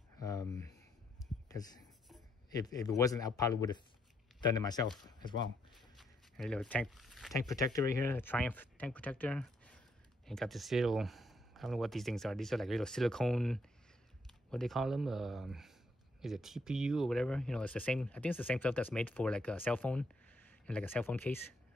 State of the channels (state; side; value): normal; both; correlation 0.74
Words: Because if it wasn't, I probably would have done it myself as well. And a little tank protector right here, a Triumph tank protector. And got this little, I don't know what these things are. These are like little silicone, what do they call them? Is it TPU or whatever? You know, it's the same. I think it's the same stuff that's made for like a cell phone, and like a cell phone case.